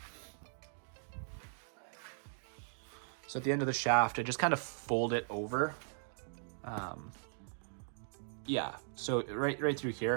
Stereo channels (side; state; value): left; silent; digital silence